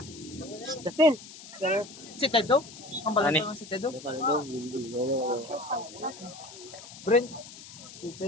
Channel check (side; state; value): left; noise; hiss, 16 dB below the sound